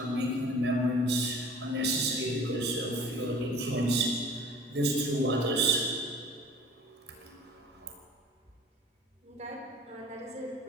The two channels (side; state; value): both; normal; correlation 0.46